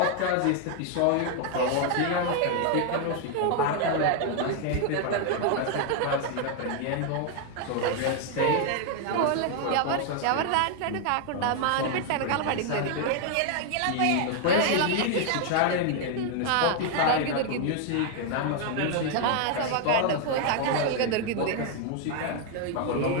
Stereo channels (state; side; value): different; both; correlation 0.00